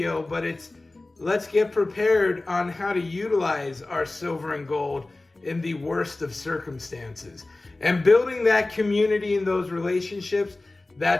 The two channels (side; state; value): right; quieter; 3.0 dB